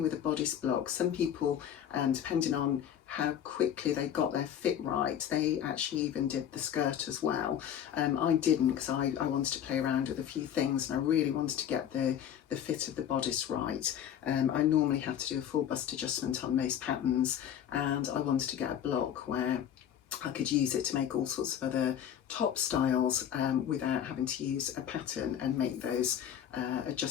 a bodice block. Some people, depending on how quickly they got their fit right, they actually even did the skirt as well. I didn't, because I wanted to play around with a few things and I really wanted to get the fit of the bodice right. I normally have to do a full bust adjustment on most patterns, and I wanted to get a block where I could use it to make all sorts of other top styles without having to use a pattern and make those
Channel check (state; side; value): quieter; right; 9.7 dB